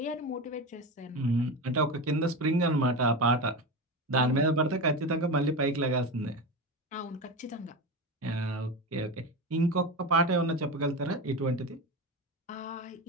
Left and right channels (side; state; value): both; normal; correlation 0.22